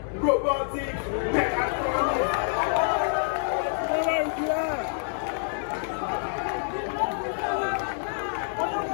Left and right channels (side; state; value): right; silent; digital silence